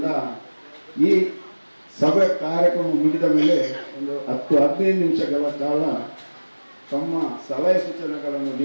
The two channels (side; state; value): both; inverted; correlation -1.00